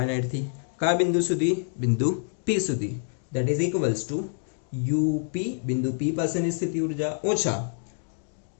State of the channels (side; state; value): right; silent; digital silence